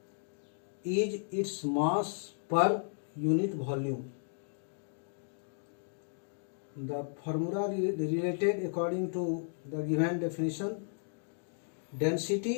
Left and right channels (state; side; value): silent; right; digital silence